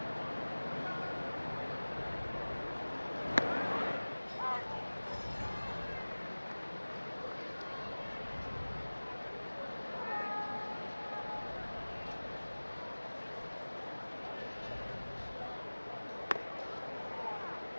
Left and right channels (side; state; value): both; inverted; correlation -1.00